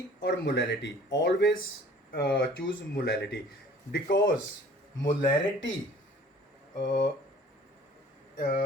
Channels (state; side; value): normal; both; correlation 0.51